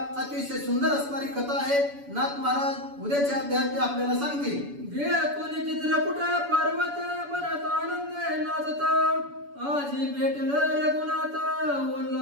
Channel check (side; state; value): left; late; 7.0 ms